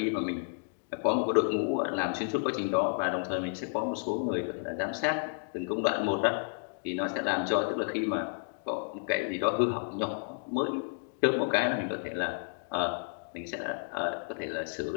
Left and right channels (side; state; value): right; silent; 57 dB below the other